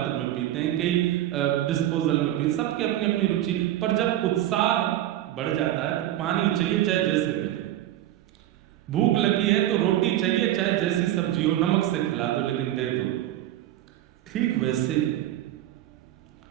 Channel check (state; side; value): quieter; left; 13.4 dB